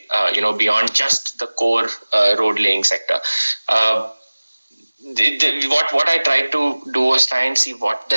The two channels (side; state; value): both; inverted; correlation -1.00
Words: beyond just the core road laying sector. What I tried to do was try and see what the